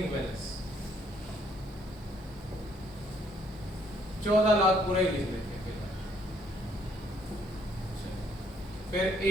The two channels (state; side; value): noise; right; hiss, 30 dB below the sound